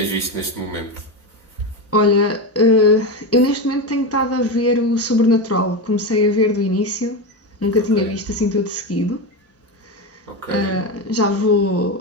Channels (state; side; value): normal; both; correlation 0.16